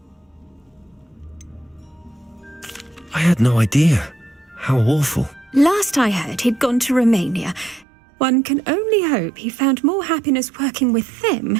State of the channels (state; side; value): drops out; left; at 7.9 s